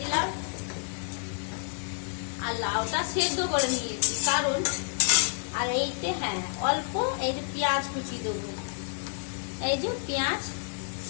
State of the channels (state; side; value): silent; right; 58 dB below the other